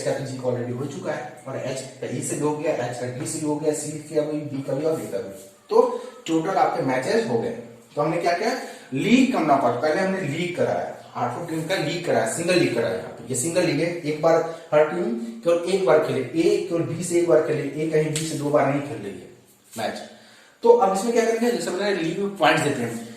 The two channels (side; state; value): both; identical; correlation 1.00